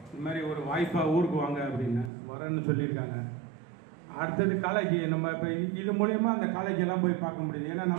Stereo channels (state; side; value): drops out; left; at 2.1 s